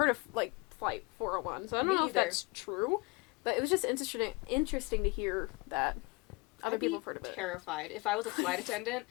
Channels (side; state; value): right; quieter; 26.2 dB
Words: of, like, Flight 401, so I don't know if that's true, but it was just interesting to hear that other people have heard of it. I'd be terrified if I was a flight attendant,